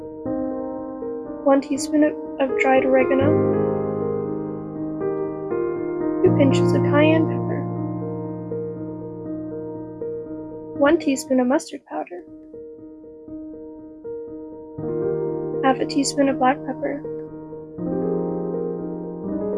One teaspoon of dried oregano. 2 pinches of cayenne pepper. 1 teaspoon of mustard powder. Half a teaspoon of black pepper.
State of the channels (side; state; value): both; identical; correlation 1.00